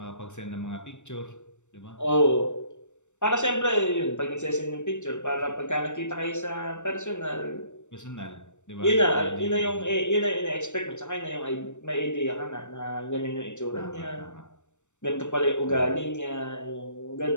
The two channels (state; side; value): late; right; 0.84 ms